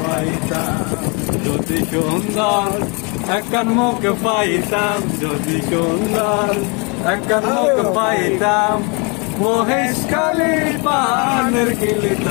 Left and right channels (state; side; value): quieter; right; 31.8 dB